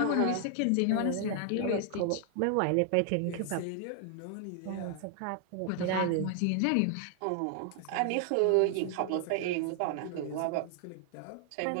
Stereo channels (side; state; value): both; different; correlation 0.00